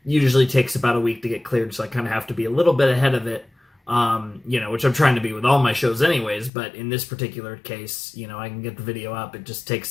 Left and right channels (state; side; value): drops out; right; at 6.5 s